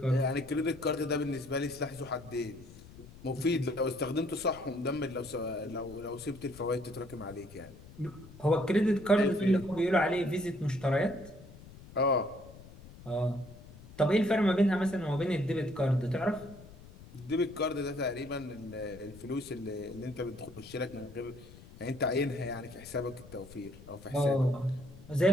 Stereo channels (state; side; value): noise; left; rumble, 18 dB below the sound